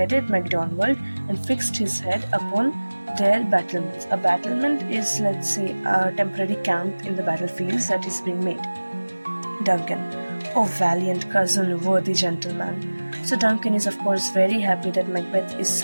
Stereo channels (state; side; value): inverted; both; correlation -1.00